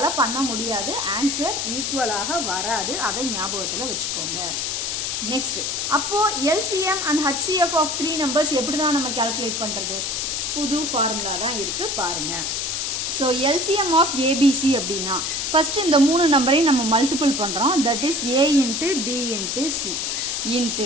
பண்ண முடியாது. ஆன்சர் ஈக்குவலாக வராது. அதை ஞாபகத்துல வச்சுக்கோங்க. நெக்ஸ்ட், அப்போ LCM and HCF of 3 numbers எப்படி தான் நம்ம கால்குலேட் பண்றது? புது ஃபார்முலா தான் இருக்கு, பாருங்க. So LCM of ABC அப்படின்னா ஃபர்ஸ்ட் இந்த 3 நம்பரையும் நம்ம மல்டிபிள் பண்றோம். That is A into B into C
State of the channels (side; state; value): left; noise; hiss, 1 dB below the sound